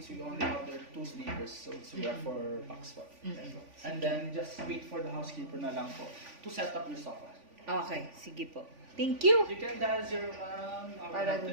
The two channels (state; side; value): late; left; 3.5 ms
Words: we only have there 2 sleepers, so we are 4 packs po. And then, just wait for the housekeeper na lang po to set up your sofa. Okay, sige po. Thank you. You can dial 0 our Para help dun